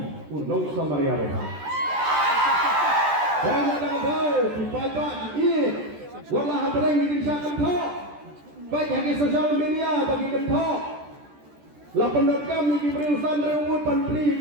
unong samaria roha dan ada bau dibaca di wala hadrang di desa kentok baik yang di sosial media bagi kentok la pendekam di berurusan rewut pantri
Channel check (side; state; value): left; late; 14 ms